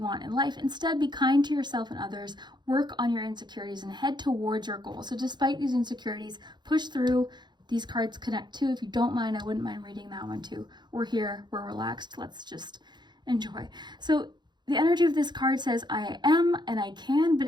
in life. Instead, be kind to yourself and others. Work on your insecurities and head towards your goal. So despite these insecurities, push through. These cards connect too. If you don't mind, I wouldn't mind reading that one too. We're here, we're relaxed. Let's just enjoy. So the energy of this card says, I am and I can,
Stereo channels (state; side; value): late; left; 0.21 ms